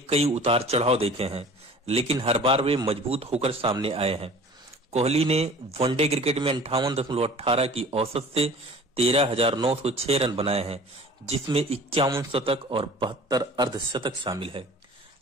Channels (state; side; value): normal; both; correlation 0.45